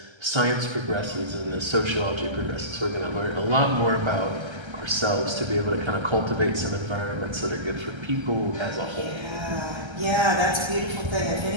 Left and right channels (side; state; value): left; late; 1.3 ms